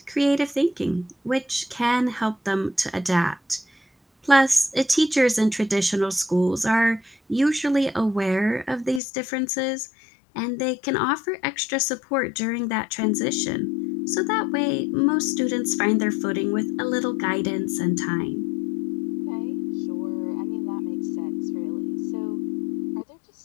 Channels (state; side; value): drops out; right; at 9.0 s